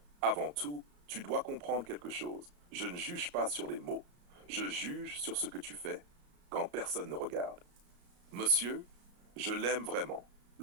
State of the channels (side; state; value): left; late; 34 ms